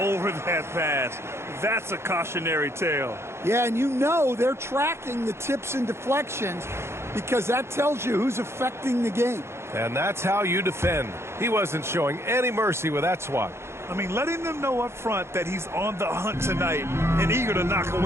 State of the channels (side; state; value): left; late; 0.13 ms